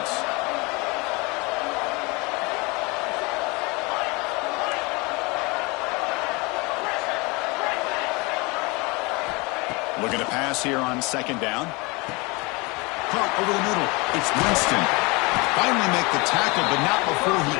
Looking to pass here on second down. Caught over the middle. It's Winston. Finally make the tackle, but not before he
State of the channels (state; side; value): quieter; right; 26.7 dB